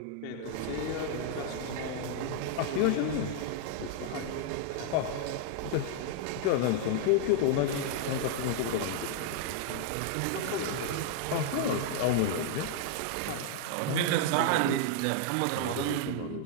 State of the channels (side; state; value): both; different; correlation -0.01